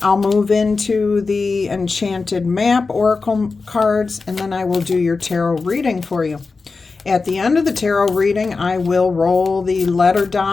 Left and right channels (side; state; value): right; quieter; 4.2 dB